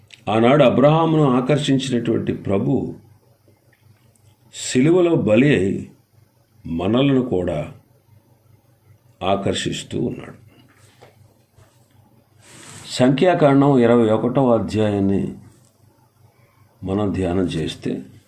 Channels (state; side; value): identical; both; correlation 1.00